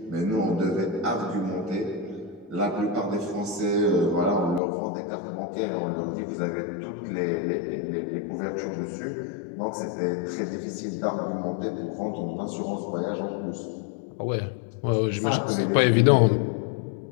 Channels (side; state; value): right; drops out; at 4.6 s